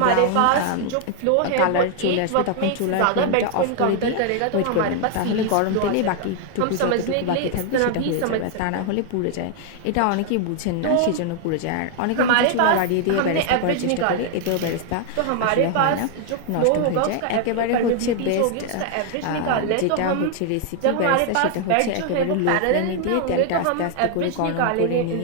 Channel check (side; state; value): both; different; correlation 0.00